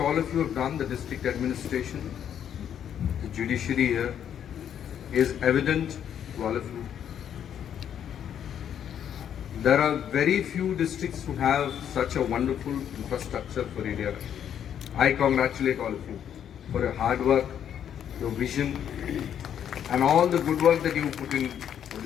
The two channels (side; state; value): right; quieter; 9.3 dB